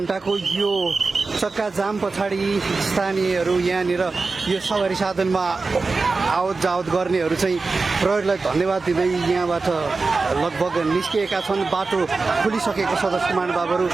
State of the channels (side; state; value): left; quieter; 4.0 dB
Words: यो चक्का जाम पछाडि स्थानीयहरू यहाँनिर यो सवारी साधनमा आवत जावत गर्नेहरू चाहिँ प्रहरीलाई धन्यवाद दिँदै यहाँबाट लगभग निस्किएका छन्। बाटो खुलिसकेको सदस्य महानुभावहरू